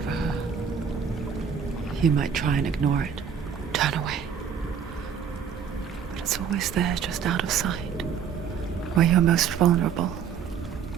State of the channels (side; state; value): left; quieter; 7.3 dB